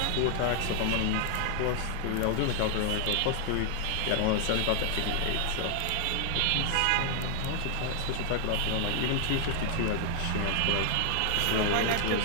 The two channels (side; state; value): both; different; correlation 0.00